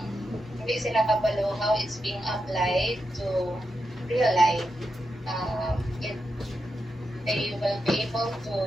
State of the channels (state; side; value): normal; both; correlation 0.86